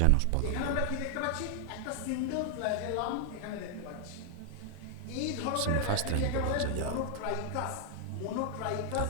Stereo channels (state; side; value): different; both; correlation 0.00